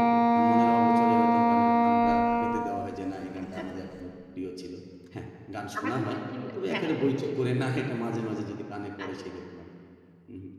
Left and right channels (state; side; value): identical; both; correlation 1.00